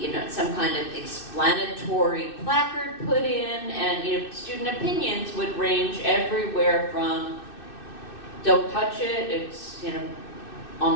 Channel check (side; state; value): right; late; 2.6 ms